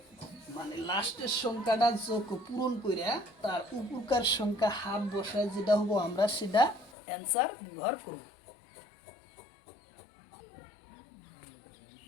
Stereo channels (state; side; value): drops out; right; at 7.0 s